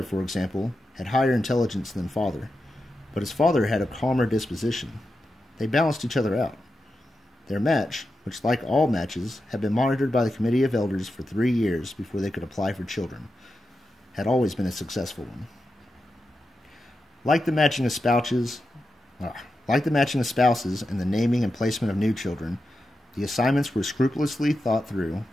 for example, had higher intelligence than father, but his father had a calmer disposition. They balanced each other out. Their match, which like all matches had been monitored by the Committee of Elders for 3 years before they could apply for children, had always been a successful one. Like the matching of spouses and the naming and placement of new children, the assignments were scrupulously thought through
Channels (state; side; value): normal; both; correlation 0.89